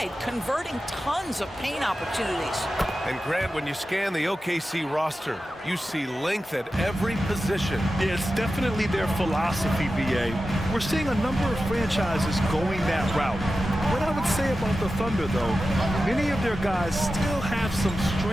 converting tons of paint opportunities. And Grant, when you scan the OKC roster, you see length at every position. Yeah, it's definitely their philosophy, BA. We're seeing a number of franchises going that route. What I would say about the Thunder, though, many of their guys still have some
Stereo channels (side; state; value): both; normal; correlation 0.93